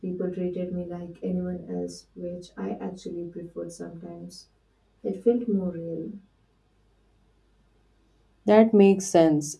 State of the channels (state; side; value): identical; both; correlation 1.00